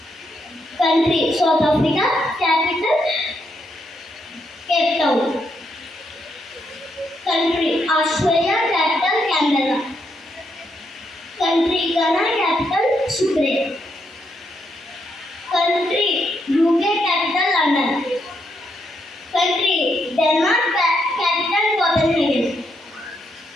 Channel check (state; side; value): normal; both; correlation 0.78